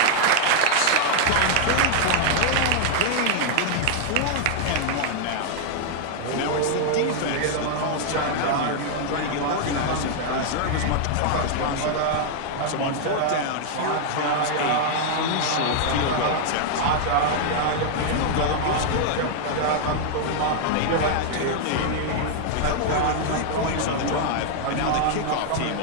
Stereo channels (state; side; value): different; both; correlation 0.00